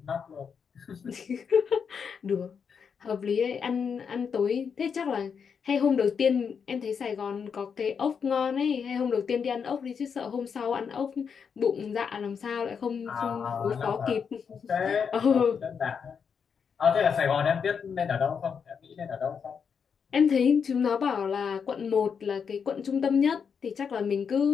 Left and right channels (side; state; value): right; quieter; 6.5 dB